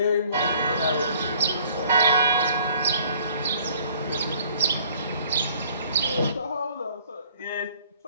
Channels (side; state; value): both; inverted; correlation -0.57